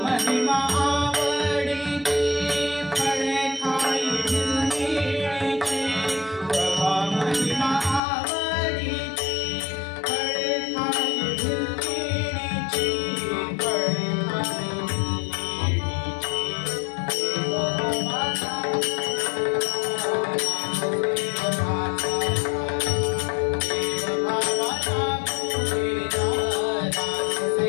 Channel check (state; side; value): drops out; right; at 8.0 s